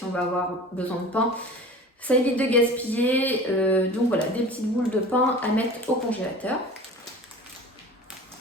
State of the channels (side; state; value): both; normal; correlation 0.39